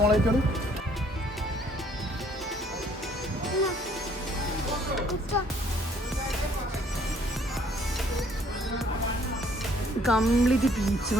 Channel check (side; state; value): both; normal; correlation 0.62